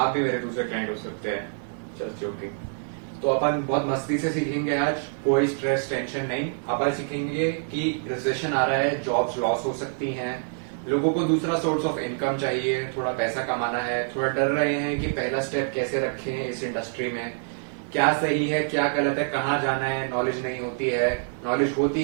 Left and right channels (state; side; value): silent; left; digital silence